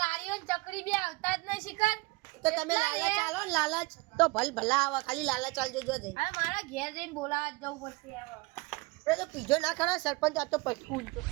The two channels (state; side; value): quieter; left; 24.8 dB